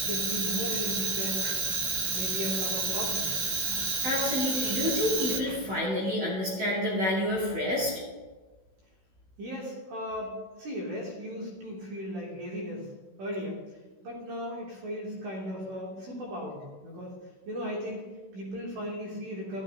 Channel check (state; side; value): late; left; 16 ms